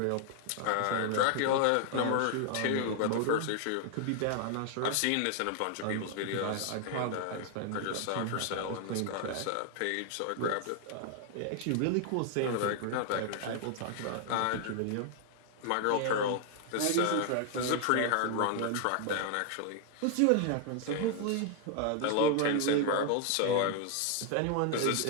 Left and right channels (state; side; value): different; both; correlation 0.00